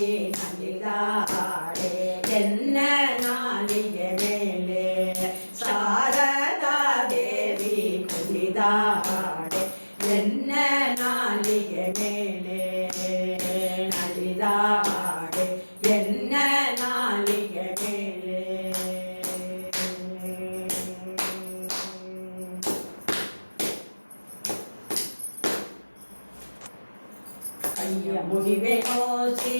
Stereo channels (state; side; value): inverted; both; correlation -1.00